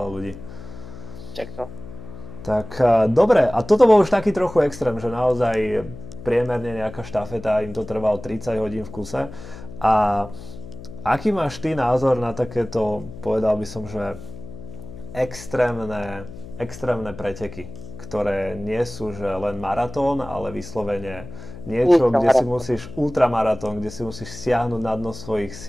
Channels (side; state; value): left; noise; hum, 14 dB below the sound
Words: ľudí. Čak to. Tak dobre, a toto bol už taký trochu extrém, že naozaj priemerne nejaká štafeta, im to trvalo 30 hodín v kuse. A aký máš ty názor na takéto, povedal by som, že extrémne preteky, ktoré nie sú že len maratón, ale vyslovene niečo, kde si musíš, ultramaratón, kde si musíš siahnuť na dno svojich